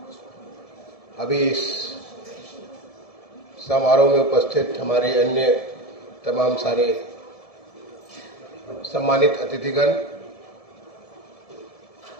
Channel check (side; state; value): right; late; 1.7 ms